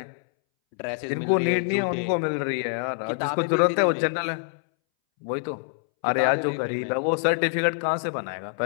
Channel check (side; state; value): right; silent; 61 dB below the other